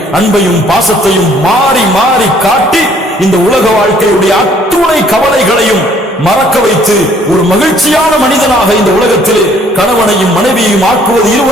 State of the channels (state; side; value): normal; both; correlation 0.61